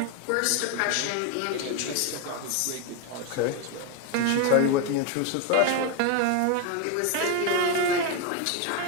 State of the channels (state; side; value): different; both; correlation 0.01